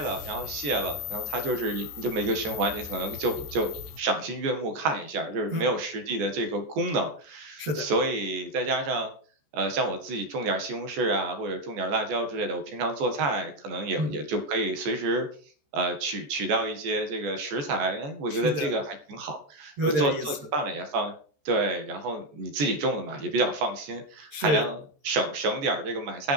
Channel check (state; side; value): late; left; 14 ms